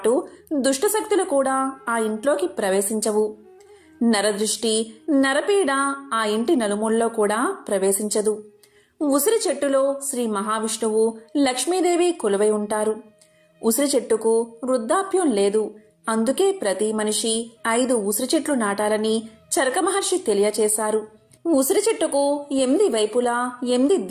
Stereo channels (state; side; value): identical; both; correlation 1.00